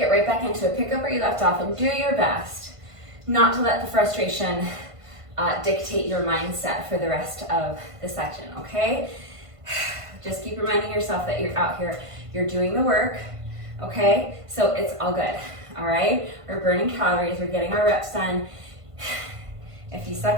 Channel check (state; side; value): late; left; 1.5 ms